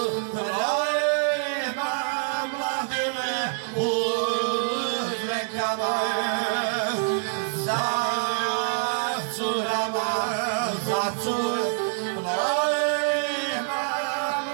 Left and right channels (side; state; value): left; silent; digital silence